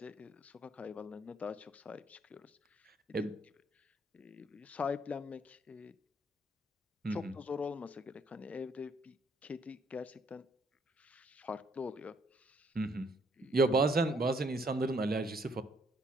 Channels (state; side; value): normal; both; correlation 0.67